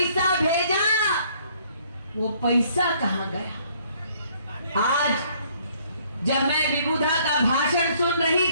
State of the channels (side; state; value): both; inverted; correlation -0.63